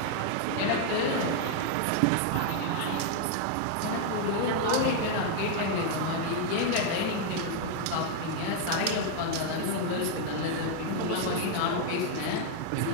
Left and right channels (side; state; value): both; different; correlation 0.00